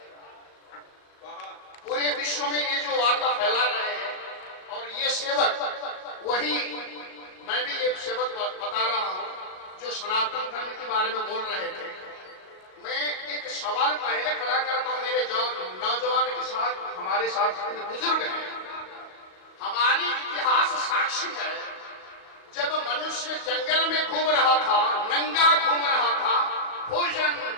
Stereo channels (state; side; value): late; right; 38 ms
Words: पूरे विश्व में ये जो वार्ता फैला रहे हैं, और ये सेवक वही, मैं भी ये सेवक बता रहा हूं जो सनातन धर्म के बारे में बोल रहे थे। मैं एक सवाल पहले खड़ा करता हूं मेरे नौजवान के साथ, हमारे साथ जितने बुजुर्ग हैं, हमारी इतिहास साक्षी है, जब मनुष्य जंगल में घूम रहा था, नंगा घूम रहा था, भोजन